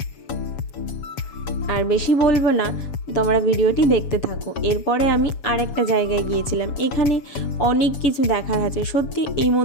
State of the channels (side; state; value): right; late; 7.1 ms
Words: আর বেশি বলবো না, তোমরা ভিডিওটি দেখতে থাকো। এরপরে আমি আরেকটা জায়গায় গিয়েছিলাম, এখানে অনেক কিছু দেখার আছে। সত্যি এই